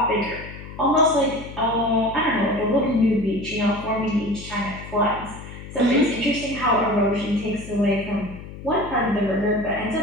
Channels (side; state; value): left; noise; hum, 13 dB below the sound